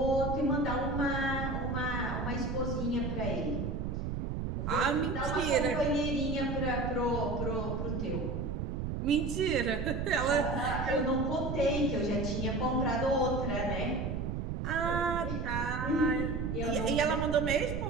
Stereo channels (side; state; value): right; noise; rumble, 3 dB below the sound